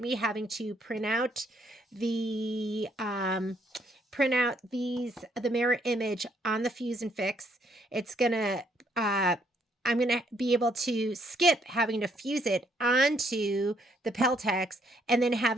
having to print out the mirror image on the fuse and fix. It's going to I'm going to be able to skip having to fuse it onto the Peltex and then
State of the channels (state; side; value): normal; both; correlation 0.70